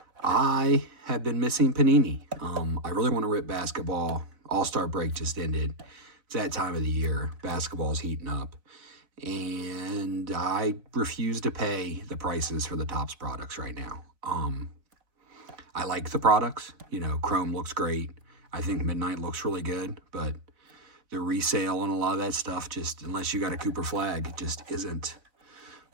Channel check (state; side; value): late; left; 4.0 ms